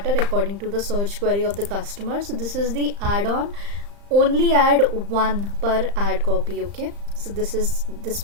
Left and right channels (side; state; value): left; late; 35 ms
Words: according to the search query of the customer. So this is the add-on. Only add one per ad copy. Okay, so this